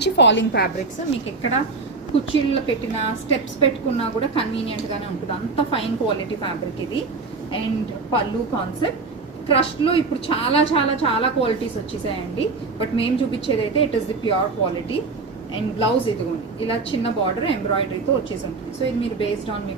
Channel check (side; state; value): left; quieter; 4.1 dB